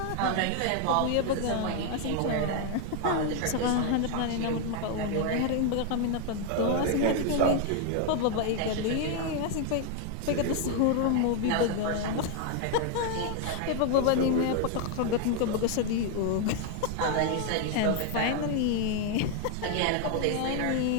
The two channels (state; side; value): different; both; correlation 0.01